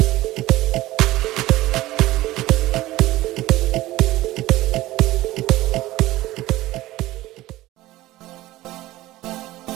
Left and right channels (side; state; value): left; quieter; 17.1 dB